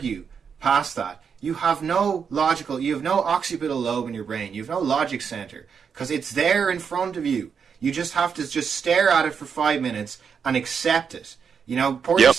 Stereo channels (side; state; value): left; quieter; 6.6 dB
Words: past that, you have no occipital lobe in your brain. You have no logic center, because it's there in front of you. You just have to just stare at it for 5 minutes and accept it. Pour